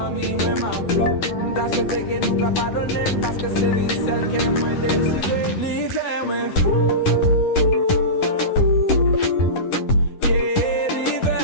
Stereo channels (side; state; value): right; late; 10 ms